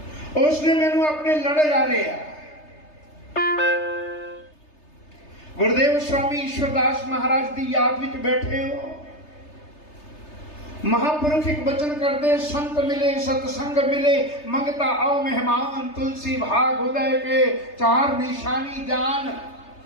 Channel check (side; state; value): right; late; 3.3 ms